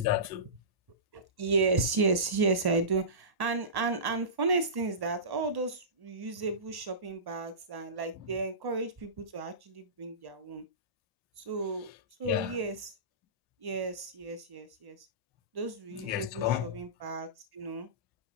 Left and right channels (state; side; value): late; left; 1.1 ms